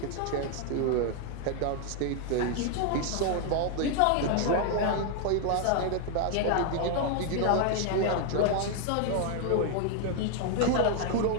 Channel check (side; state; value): both; different; correlation 0.00